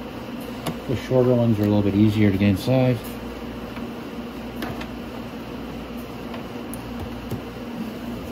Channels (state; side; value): identical; both; correlation 1.00